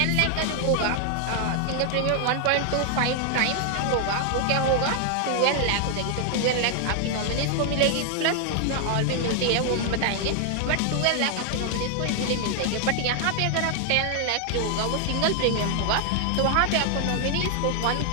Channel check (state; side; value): different; both; correlation 0.00